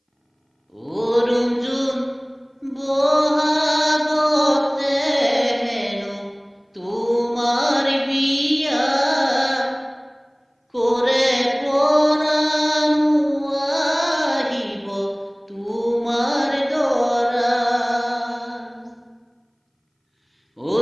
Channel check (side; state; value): both; identical; correlation 1.00